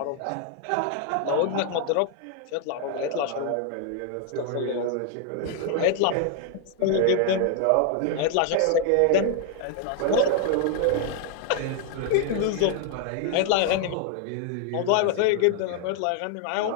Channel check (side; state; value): both; different; correlation 0.00